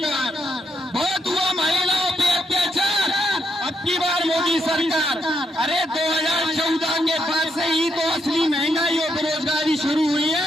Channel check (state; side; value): normal; both; correlation 0.78